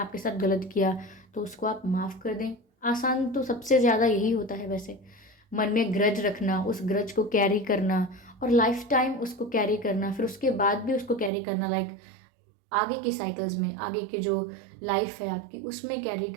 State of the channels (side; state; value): left; drops out; at 11.3 s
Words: साथ गलत किया तो उसको आप माफ़ कर दें। आसान तो सबसे ज़्यादा यही होता है वैसे, मन में ग्रज रखना, उस ग्रज को कैरी करना और लाइफ टाइम उसको कैरी करना, फिर उसके बाद भी उसको कैरी करना, लाइक आगे की साइकिल्स में, आगे के जो लाइफ है आपकी उसमें कैरी